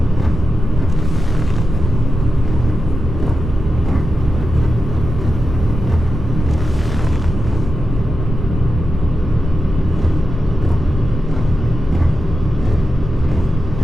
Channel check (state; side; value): normal; both; correlation 0.89